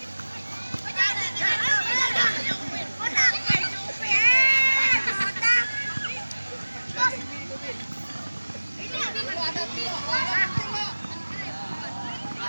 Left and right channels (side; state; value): both; inverted; correlation -1.00